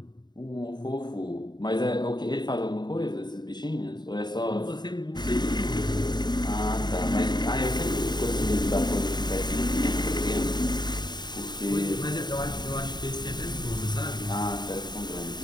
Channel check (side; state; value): right; late; 0.21 ms